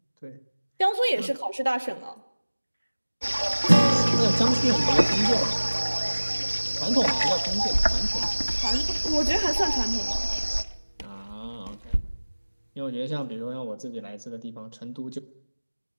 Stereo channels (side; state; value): both; inverted; correlation -1.00